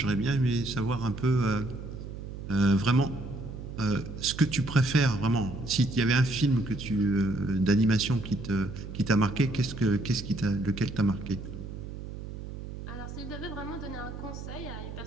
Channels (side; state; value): right; noise; hum, 10 dB below the sound